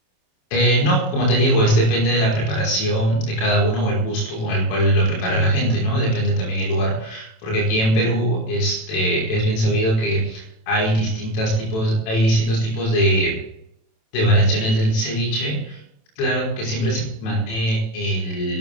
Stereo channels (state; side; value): late; right; 27 ms